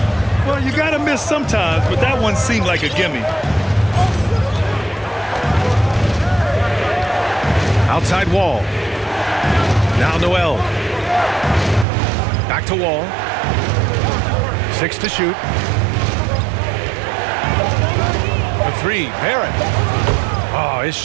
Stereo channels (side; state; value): left; drops out; at 11.9 s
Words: Well, you got to miss sometimes, but that one seemed like a gimme. Outside Wall. Now Noel. Back to Wall. 6 to shoot. For 3, Barrett. Oh, his